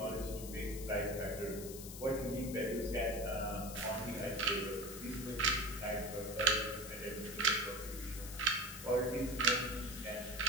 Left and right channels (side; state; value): left; noise; hiss, 11 dB below the sound